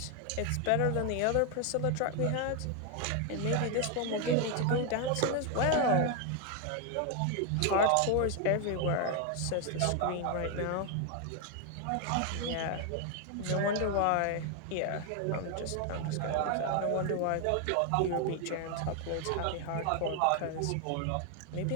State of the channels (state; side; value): different; both; correlation 0.01